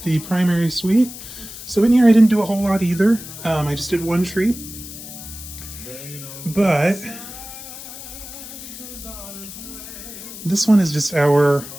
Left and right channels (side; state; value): left; noise; hiss, 13 dB below the sound